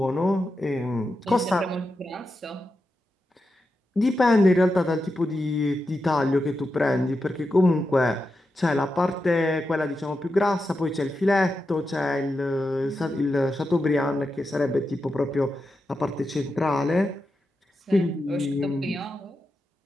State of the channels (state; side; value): normal; both; correlation 0.88